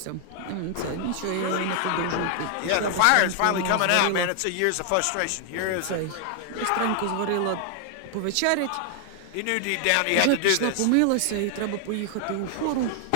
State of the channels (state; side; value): different; both; correlation 0.00